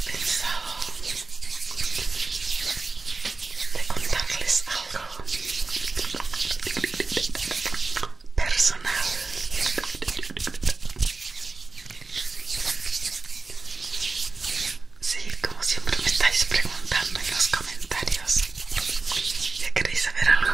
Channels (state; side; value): quieter; left; 3.9 dB